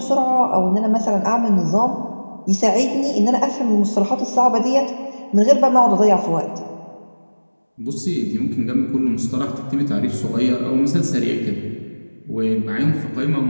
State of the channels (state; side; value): inverted; both; correlation -1.00